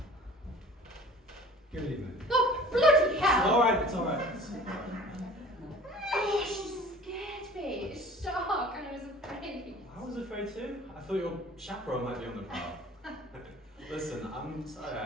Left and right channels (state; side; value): normal; both; correlation 0.45